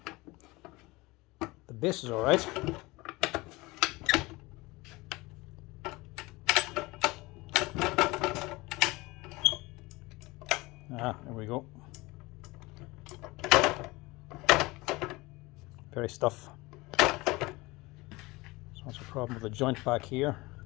The base is alright. There we go. Very stiff. So that's a problem with the joint back here,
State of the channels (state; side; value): quieter; right; 22.3 dB